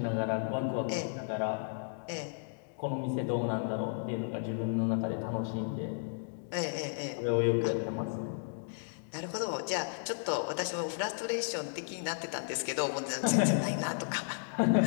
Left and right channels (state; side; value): silent; right; digital silence